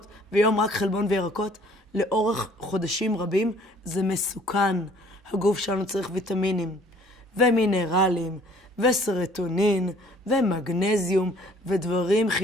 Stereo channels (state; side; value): normal; both; correlation 0.56